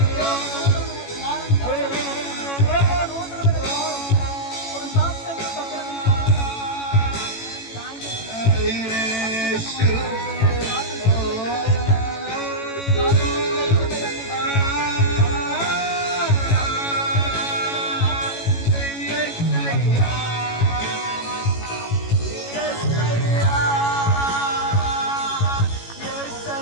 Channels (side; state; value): right; late; 18 ms